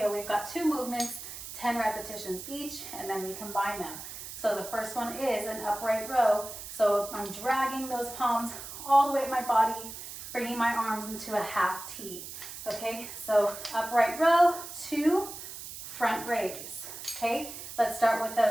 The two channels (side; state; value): right; noise; hiss, 11 dB below the sound